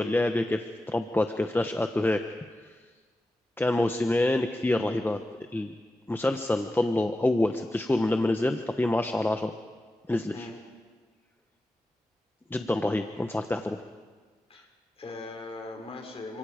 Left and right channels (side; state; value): both; normal; correlation 0.92